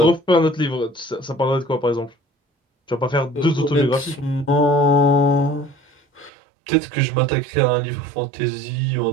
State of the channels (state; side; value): drops out; left; at 6.3 s